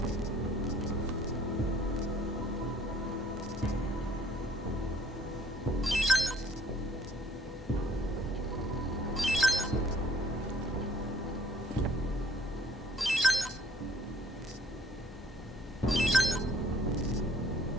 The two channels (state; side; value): normal; both; correlation 0.57